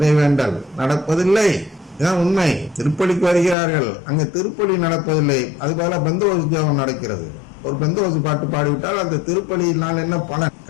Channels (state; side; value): drops out; right; at 3.6 s